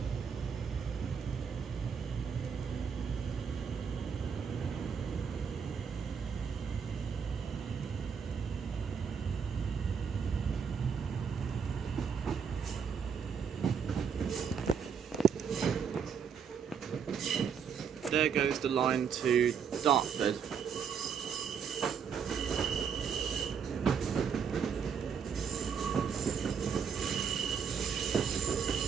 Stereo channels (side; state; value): left; quieter; 6.8 dB